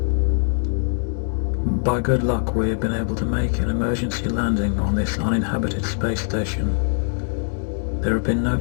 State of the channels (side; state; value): right; silent; 64 dB below the other